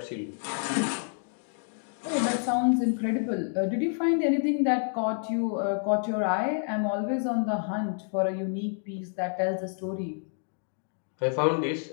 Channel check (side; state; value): right; silent; 59 dB below the other